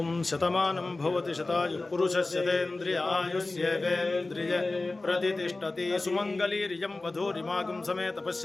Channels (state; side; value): quieter; right; 3.2 dB